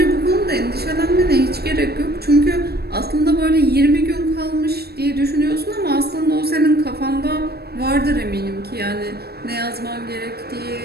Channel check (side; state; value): left; late; 0.46 ms